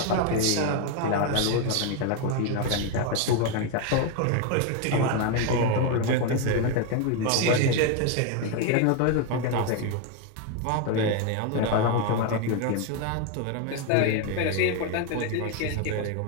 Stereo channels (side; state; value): both; different; correlation 0.01